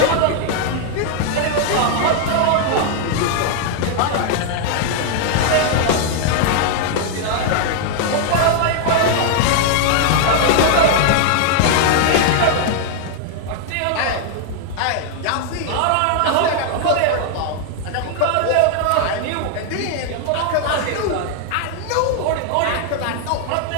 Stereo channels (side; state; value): both; different; correlation 0.00